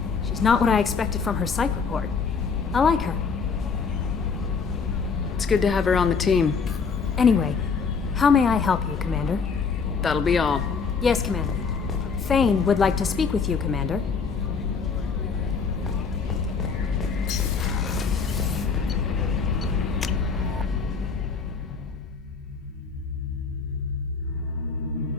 She's not what I expected from her psych report. I like her. It's good to have her on the team. Anyway, how may I help you, Commander? That'll be all. Yes, Commander. Thane would like to speak with you, Commander.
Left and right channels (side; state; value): right; quieter; 5.4 dB